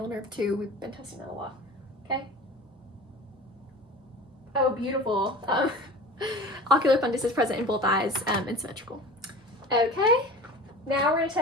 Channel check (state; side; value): normal; both; correlation 0.37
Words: nerve 2. We've been testing that a lot. Okay? Oh, beautiful. Ocular fundus is present in both eyes and symmetrical. Okay, now we're going to